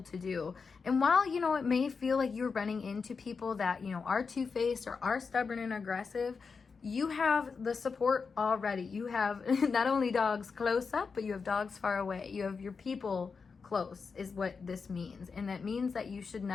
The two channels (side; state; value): right; quieter; 5.2 dB